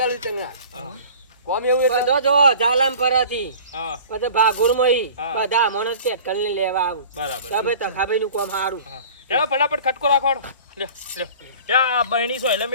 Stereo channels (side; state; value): both; inverted; correlation -0.44